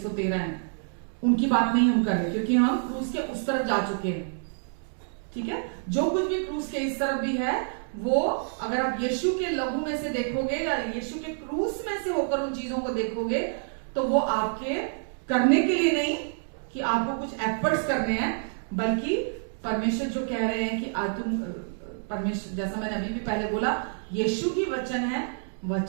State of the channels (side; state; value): left; silent; digital silence